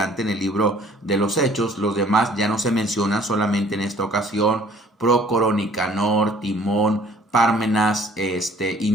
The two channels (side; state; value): both; normal; correlation 0.56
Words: en el libro de los Hechos. Los demás ya no se mencionan, solamente en esta ocasión Prócoro, Nicanor, Timón, Pármenas y